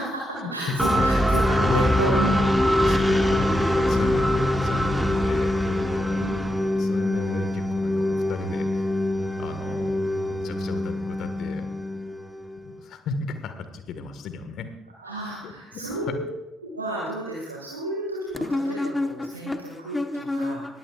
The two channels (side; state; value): both; normal; correlation 0.84